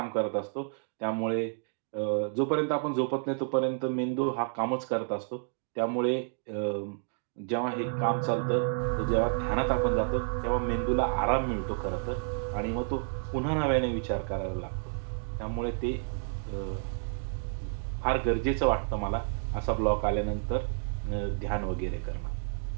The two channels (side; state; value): left; silent; 58 dB below the other